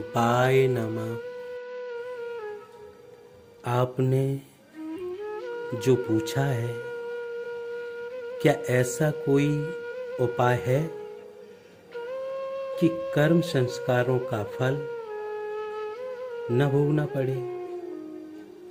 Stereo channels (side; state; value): both; identical; correlation 1.00